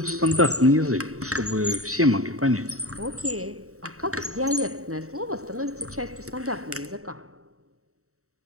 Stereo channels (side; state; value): left; late; 0.64 ms